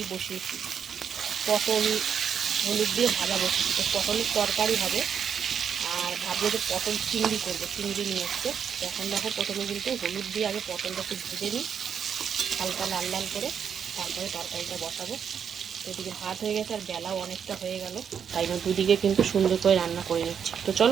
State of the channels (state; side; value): quieter; left; 7.6 dB